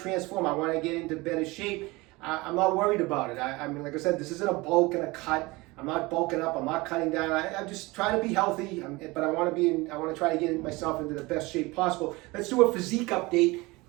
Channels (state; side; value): quieter; left; 22.8 dB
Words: I want to get into better shape. I'm not worried about it. I mean, like I said, this isn't a bulk and a cut. I'm not bulking up. I'm not cutting down. I'm just trying to be healthy. But I want to try to get myself into the best shape possible. Let's do a physique update